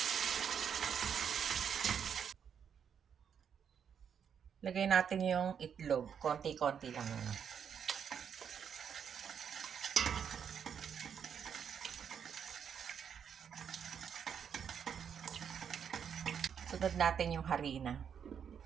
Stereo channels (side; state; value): left; quieter; 7.7 dB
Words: Lagay natin yung itlog. Konti-konti lang. Sunod natin yung harina.